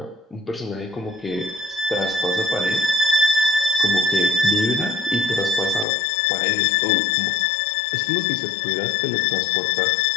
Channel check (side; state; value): right; drops out; at 5.9 s